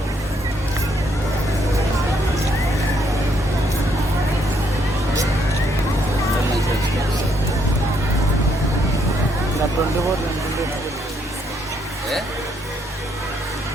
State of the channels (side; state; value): both; normal; correlation 0.72